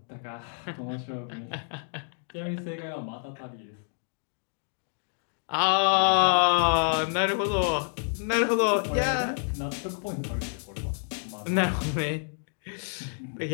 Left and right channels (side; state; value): right; silent; 59 dB below the other